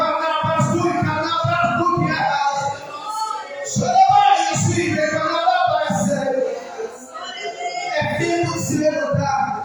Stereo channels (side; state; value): both; identical; correlation 1.00